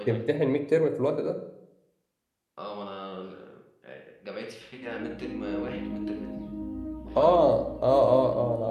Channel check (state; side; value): identical; both; correlation 1.00